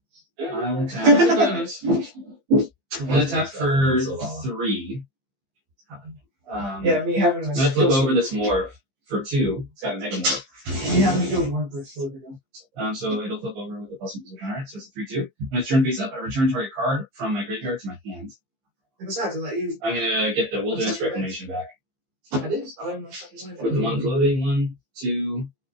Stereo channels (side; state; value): left; late; 15 ms